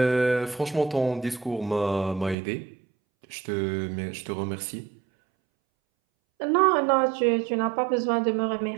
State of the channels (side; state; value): left; drops out; at 2.4 s